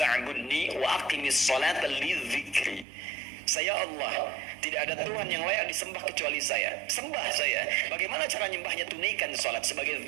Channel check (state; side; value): drops out; left; at 2.9 s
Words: wa aqimis salata lidzikri. Saya Allah, tidak ada Tuhan yang layak disembah kecuali saya. Sembah saya. Bagaimana cara nyembahnya? Tunaikan salat sebagai